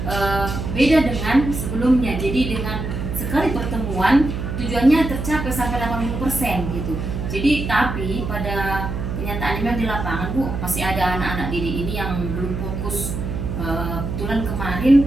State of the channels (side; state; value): right; noise; hum, 4 dB below the sound